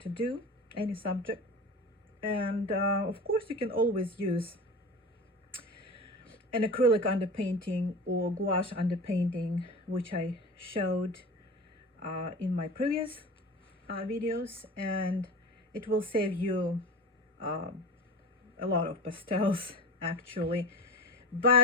to do, any subject. And of course, you can always use an acrylic underpainting or gouache underpainting, which I showed in my previous videos, and it will save you um, a lot of pastels actually.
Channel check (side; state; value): both; normal; correlation 0.32